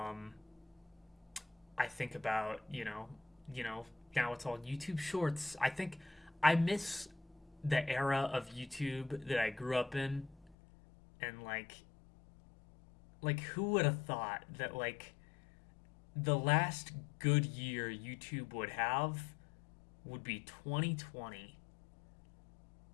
I think about now it's all YouTube Shorts. I think I miss the era of YouTube that I grew up in, and who would have thought that the last good year YouTube would have would be 2020.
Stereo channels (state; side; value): drops out; right; at 10.6 s